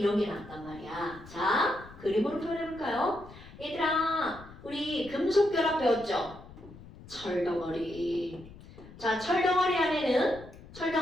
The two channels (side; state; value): left; noise; rumble, 18 dB below the sound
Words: 게 나왔단 말이야. 자, 그림으로 표현해볼까요? 얘들아, 우리 금속 결합 배웠죠? 철덩어리. 자, 철덩어리 안에는